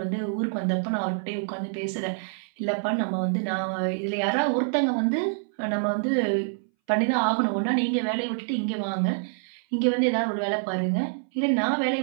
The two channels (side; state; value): left; silent; 61 dB below the other